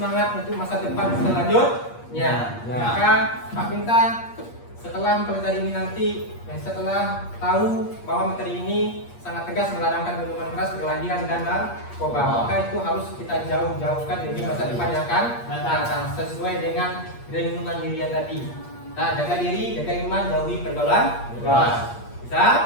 untuk masa depan selanjutnya. Maka Pak minta setelah mempelajari ini nanti, setelah tahu bahwa materi ini sangat tegas melarangkan minuman keras, perkelahian, dan narkoba, maka itu harus kita jauhkan dari masa depan yang akan datang sesuai dengan renungan diri yang tadi. Nah, jaga diri, jaga iman, jauhi pergaulan keras. Bisa?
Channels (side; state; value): right; late; 8.5 ms